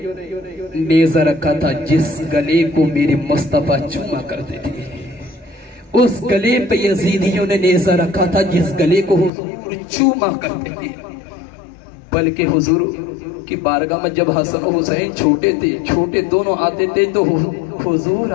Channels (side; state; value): right; drops out; at 9.3 s